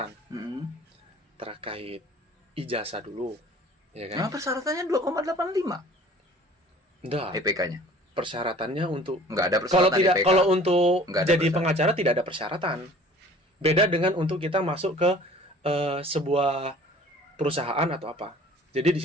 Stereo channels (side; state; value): both; normal; correlation 0.48